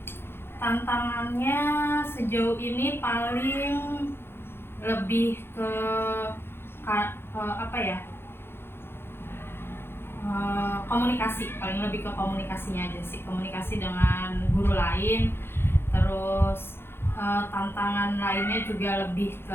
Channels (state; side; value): late; right; 0.11 ms